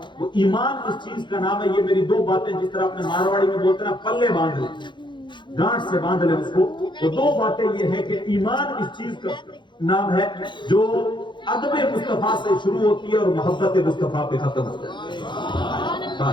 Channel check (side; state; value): right; late; 0.23 ms